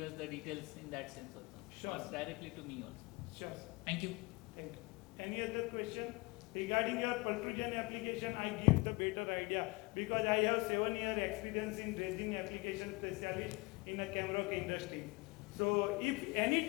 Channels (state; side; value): quieter; right; 26.2 dB